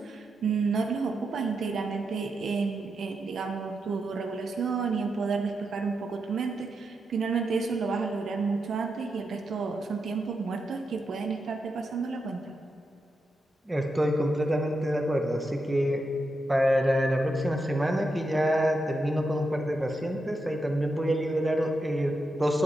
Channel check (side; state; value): both; normal; correlation 0.86